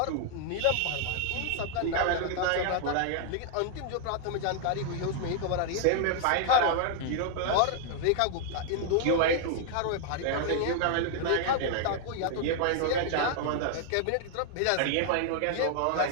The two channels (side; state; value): both; different; correlation -0.01